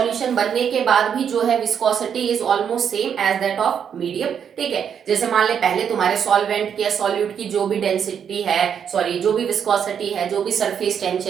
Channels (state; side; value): quieter; left; 7.9 dB